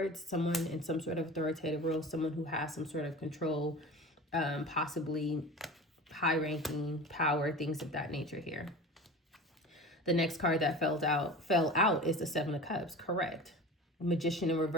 someone in some sort of authoritative role, someone who has some sort of control, possibly high ranking power, things of that nature here. The next card that fell out is the Seven of Cups. Correct. Magician in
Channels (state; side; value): normal; both; correlation 0.35